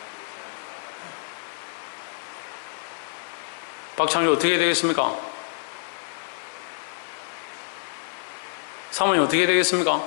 박창주 어떻게 해야 되겠습니까? 사모님 어떻게 되겠습니까?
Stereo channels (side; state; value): right; silent; 60 dB below the other